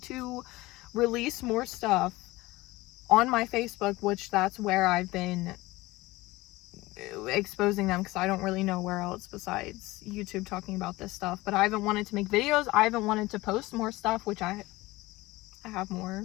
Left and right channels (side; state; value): right; quieter; 19.9 dB